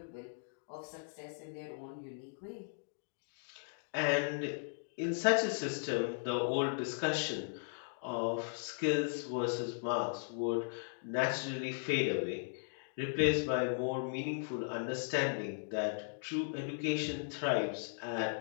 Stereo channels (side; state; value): right; silent; digital silence